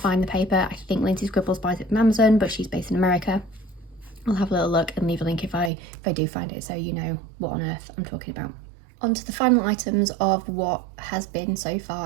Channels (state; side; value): drops out; left; at 5.7 s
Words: the paper. I think Lindsay Scribbles buys it from Amazon, but she's based in America. I'll have a little look and leave a link if I do find it, so you know what on earth I'm talking about. On to the final items of what has been so